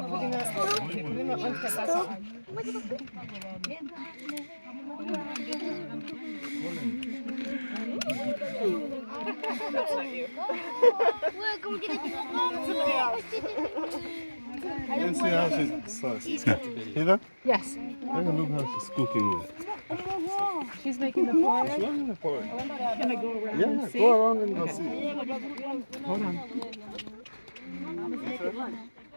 You see how she's Heather? Yes. Look how she's cooking it. She's making the porridge. She's making the porridge. Can I go around Yeah, and see? go around and go see. Hold on.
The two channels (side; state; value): both; inverted; correlation -1.00